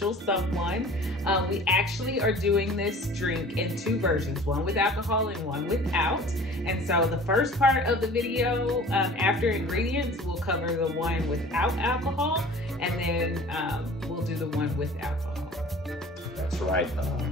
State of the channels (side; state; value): both; normal; correlation 0.44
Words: someone. We actually are doing this drink in two versions, one with alcohol and one without. And so the first part of the video, after ingredients, we'll cover the one without alcohol, and then we'll do the one with alcohol. That's right.